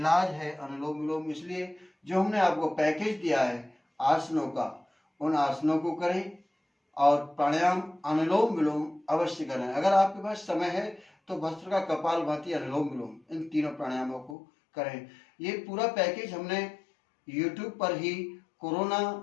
है अनुलोम विलोम। इसलिए जो हमने आपको पैकेज दिया है आसनों का, उन आसनों को करें और प्राणायाम अनुलोम विलोम अवश्य करें। अगर आपके पास समय है तो भस्त्रिका, कपालभाति, अनुलोम विलोम, इन तीनों प्राणायामों को करें। ये पूरा पैकेज हमने YouTube पर ही कोरोना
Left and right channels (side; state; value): right; drops out; at 14.4 s